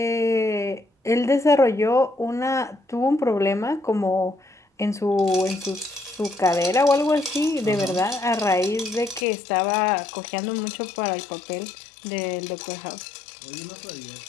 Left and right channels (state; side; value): drops out; right; at 9.2 s